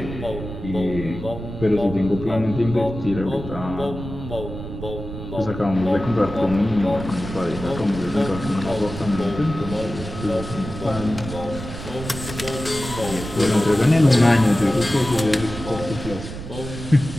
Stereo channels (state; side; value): noise; right; rumble, 9 dB below the sound